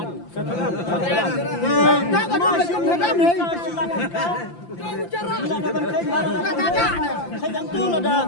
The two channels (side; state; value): right; late; 5.8 ms